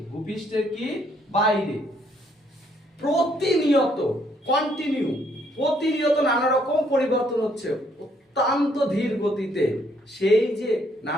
বাইরে প্রতিনিয়ত নানা রকম পরিবর্তন হচ্ছে অত্যন্ত ধীর গতিতে, সেই যে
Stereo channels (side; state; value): both; normal; correlation 0.68